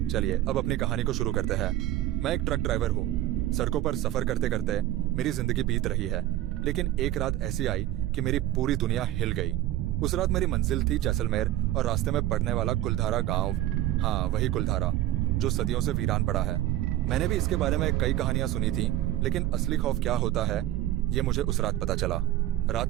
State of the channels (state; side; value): quieter; left; 14.2 dB